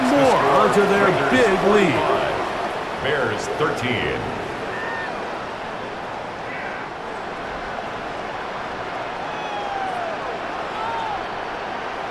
more onto their big lead. Bears 13.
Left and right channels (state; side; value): identical; both; correlation 1.00